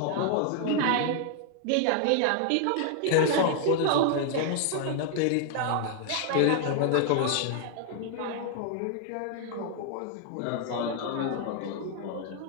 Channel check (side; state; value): both; different; correlation 0.00